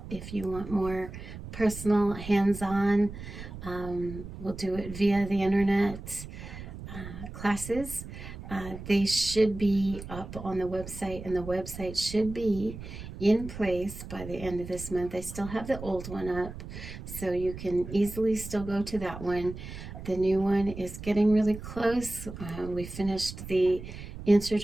If you want more personal, hands-on, we'll do it via the internet classes. They should be up on the website, and the website should be in place by the end of this month. I still have the old one up, so you can easily still go to that one. The new one is getting really close. We finished the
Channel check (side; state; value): right; noise; rumble, 11 dB below the sound